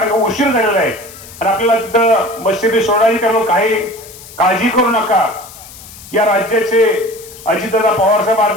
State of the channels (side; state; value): left; noise; hiss, 18 dB below the sound